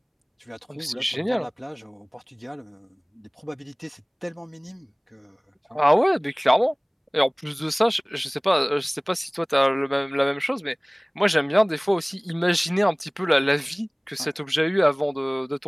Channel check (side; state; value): both; identical; correlation 1.00